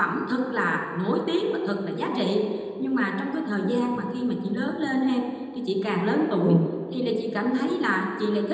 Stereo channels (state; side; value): identical; both; correlation 1.00